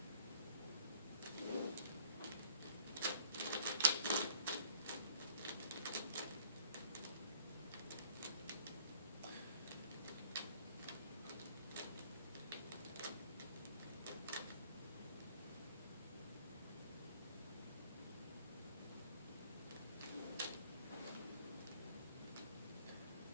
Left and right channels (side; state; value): both; inverted; correlation -0.55